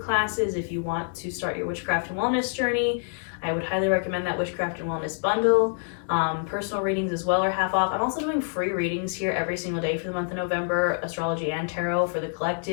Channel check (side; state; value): right; silent; 61 dB below the other